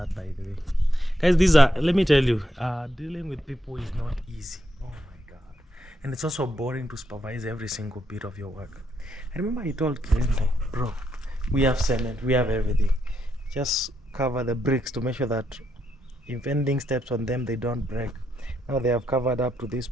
by the way. Guys, let me tell you, dealing with people is not easy. Oh my God. And it's also boring to supervise every single bit of your work. I remember I told Kende, bro, we have cement, we have everything. Just cover the bricks to make sure that if anything steps on them, they don't break. Now they have covered up to this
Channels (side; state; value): both; normal; correlation 0.79